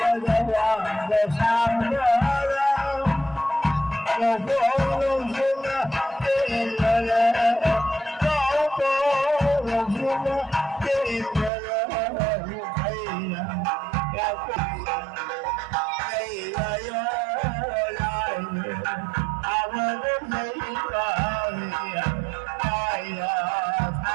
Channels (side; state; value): left; drops out; at 11.5 s